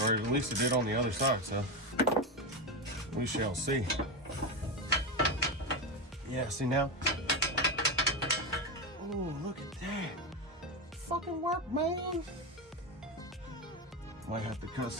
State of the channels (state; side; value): normal; both; correlation 0.14